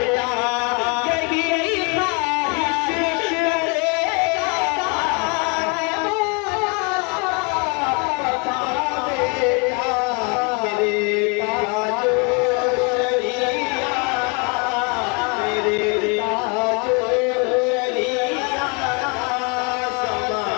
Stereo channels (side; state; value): right; quieter; 33.2 dB